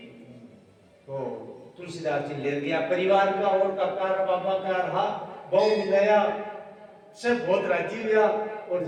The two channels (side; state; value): both; identical; correlation 1.00